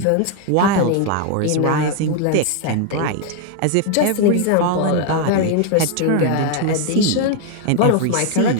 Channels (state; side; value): different; both; correlation 0.00